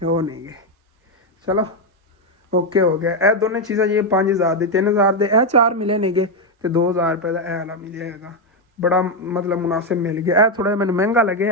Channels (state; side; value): normal; both; correlation 0.04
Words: ਉਹ ਨਹੀਂਗੇ। ਚਲੋ ਓਕੇ ਹੋ ਗਿਆ। ਇਹ ਦੋਨੇ ਚੀਜ਼ਾਂ ਜੀ 5000 ਦੇ, 3000 ਦੇ ਇਹ 4 ਮਿਲੇ ਨੇਗੇ ਤੇ 2000 ਰੁਪਏ ਦਾ ਇਹ ਵਾਲਾ ਮਿਲਿਆ ਹੈਗਾ। ਬੜਾ ਮਤਲਬ ਮੁਨਾਸਿਬ ਮਿਲ ਗਿਆ। ਇਹ ਥੋੜਾ ਜਿਹਾ ਮੈਨੂੰ ਮਹਿੰਗਾ